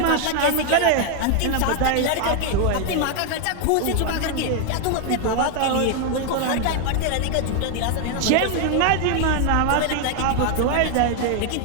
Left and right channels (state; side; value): different; both; correlation 0.00